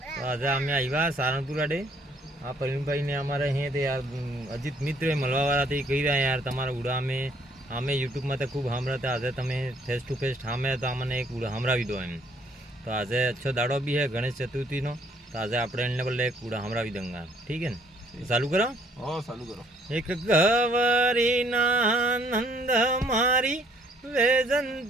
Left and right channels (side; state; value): both; normal; correlation 0.64